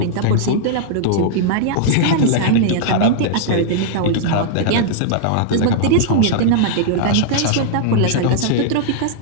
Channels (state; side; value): different; both; correlation -0.01